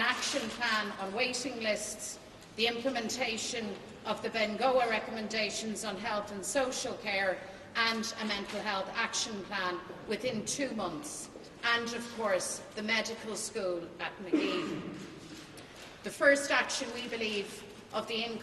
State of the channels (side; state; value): both; identical; correlation 1.00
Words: action plan on waiting lists, the implementation of the Bengoa recommendations on health and social care, and a mental health action plan within 2 months, and of course the medical school at Magee. The first action, we believe, of the